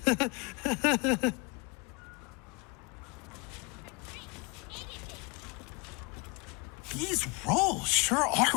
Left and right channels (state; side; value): quieter; right; 29.9 dB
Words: These roles sure